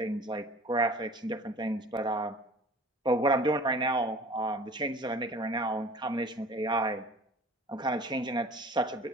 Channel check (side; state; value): both; normal; correlation 0.44